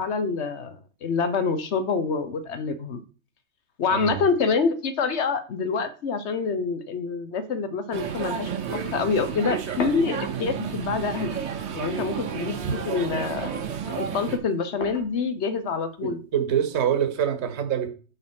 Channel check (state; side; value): late; right; 3.2 ms